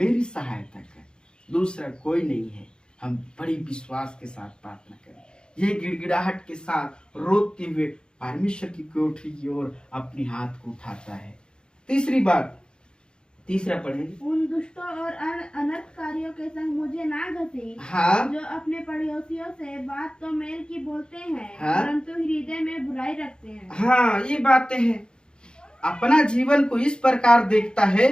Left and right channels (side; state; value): right; late; 0.049 ms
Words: सहायता कर, दूसरा कोई नहीं है। हम बड़ी विश्वास के साथ प्रार्थना करें, ये गिड़गिड़ाहट के साथ रोते हुए परमेश्वर की कोठरी की ओर अपनी हाथ को उठाता है। तीसरी बात, तीसरा पढ़ेंगे, उन दुष्टों और अनर्थकारियों के संग मुझे ना घसी, हाँ, जो अपने पड़ोसियों से बात तो मेल की बोलते हैं, हाँ, परंतु हृदय में बुराई रखते हैं। हाँ, ये बातें हैं। अपना जीवन को इस प्रकार देखता है